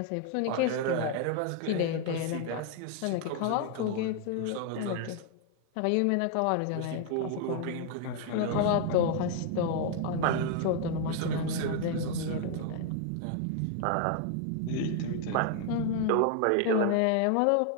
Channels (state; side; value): different; both; correlation 0.00